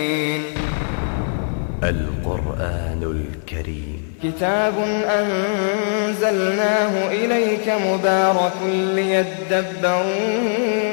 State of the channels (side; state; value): right; silent; 65 dB below the other